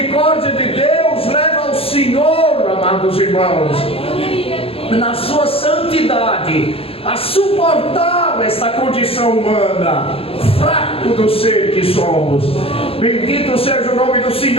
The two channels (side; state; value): right; late; 0.27 ms